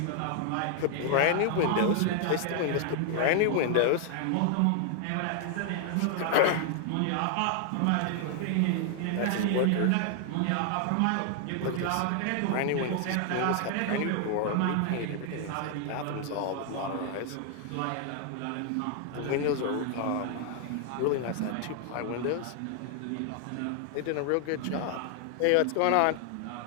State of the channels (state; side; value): different; both; correlation 0.00